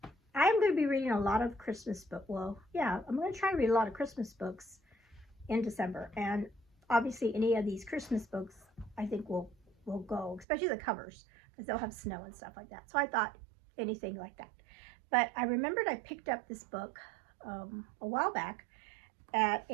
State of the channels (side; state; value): left; drops out; at 10.5 s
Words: I'm going to be reading a lot of Christmas books. Well, yeah, I'm going to try to read a lot of Christmas books in December. And obviously any of these Christmas books I think will go, especially the covers, because they'll have snow and stuff like that. So I thought anything like that. But I remembered I picked up this book a while back at